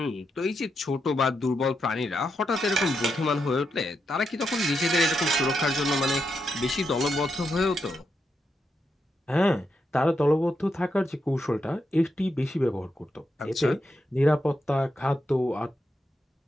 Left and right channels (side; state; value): both; normal; correlation 0.84